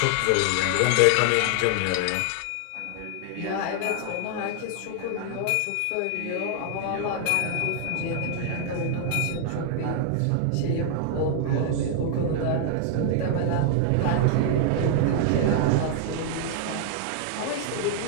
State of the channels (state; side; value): different; both; correlation 0.00